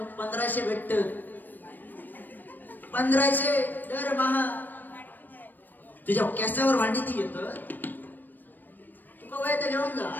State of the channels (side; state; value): right; late; 0.089 ms